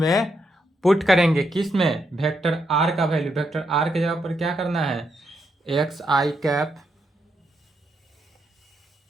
पुट करेंगे, किस में, वेक्टर आर का वैल्यू। वेक्टर आर के जगह पर क्या करना है, एक्स आई कैप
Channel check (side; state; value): both; normal; correlation 0.80